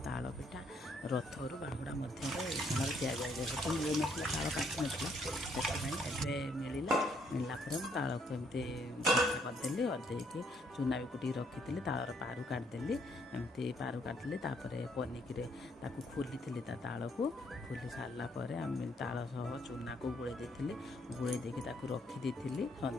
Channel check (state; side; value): normal; both; correlation 0.69